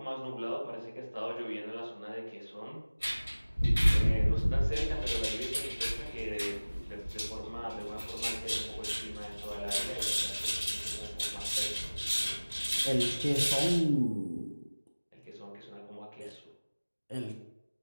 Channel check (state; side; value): inverted; both; correlation -1.00